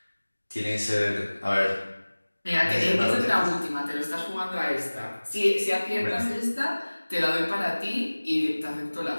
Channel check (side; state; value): both; inverted; correlation -1.00